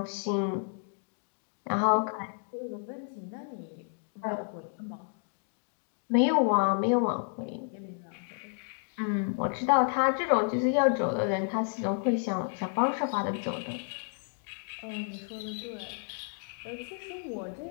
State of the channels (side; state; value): right; silent; 57 dB below the other